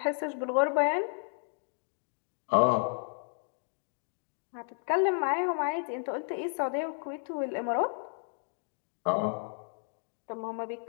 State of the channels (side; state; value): right; silent; 56 dB below the other